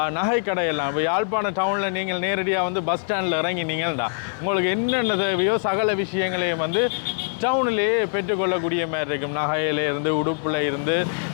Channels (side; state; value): right; silent; digital silence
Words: நகை கடையெல்லாம். இப்போ யாழ்ப்பாண டவுனில் நீங்கள் நேரடியாக வந்து பஸ் ஸ்டாண்டில் இறங்கினீங்கள்டா உங்களுக்கு என்னென்ன தேவையோ சகல விஷயங்களையும் வந்து டவுனிலேயே பெற்றுக்கொள்ளக்கூடிய மாதிரி இருக்கும். நகையிலேருந்து, உடுப்பில் இருந்து,